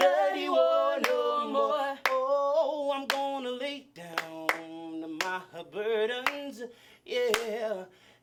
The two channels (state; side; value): identical; both; correlation 1.00